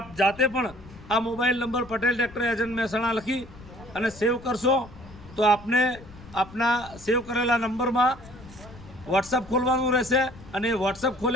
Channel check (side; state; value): left; noise; rumble, 19 dB below the sound